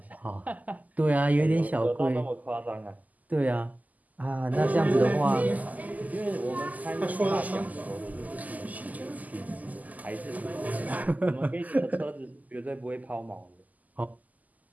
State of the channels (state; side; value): late; left; 0.079 ms